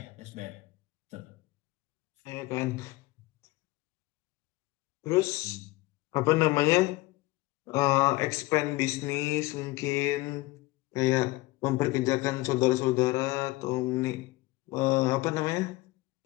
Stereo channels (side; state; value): right; quieter; 20.6 dB